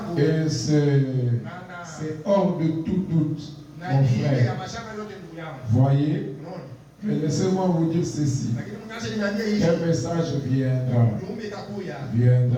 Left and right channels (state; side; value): identical; both; correlation 1.00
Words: Et c'est hors de tout doute, mon frère. Voyez? Mais laissez-moi vous dire ceci. Quel message viendra?